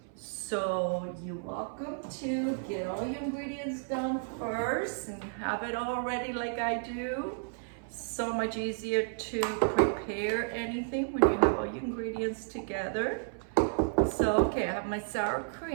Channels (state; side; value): silent; left; 56 dB below the other